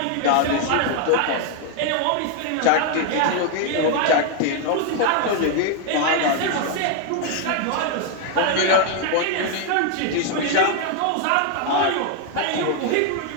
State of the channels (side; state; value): both; different; correlation 0.01